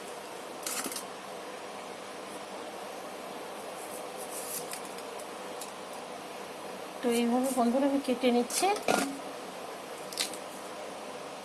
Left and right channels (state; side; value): identical; both; correlation 1.00